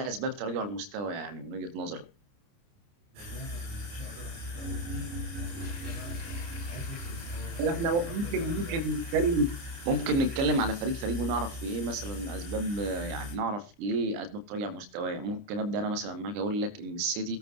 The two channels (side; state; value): left; late; 29 ms